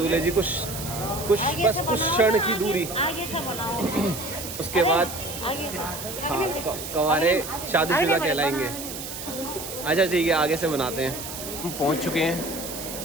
जी को कुछ बस कुछ क्षण की दूरी, उसके बाद हाँ कंवारे शादीशुदा कहलाएंगे। अच्छा ठीक है, आगे से बनाते हैं। हम पहुंच चुके हैं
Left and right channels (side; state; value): right; noise; hiss, 8 dB below the sound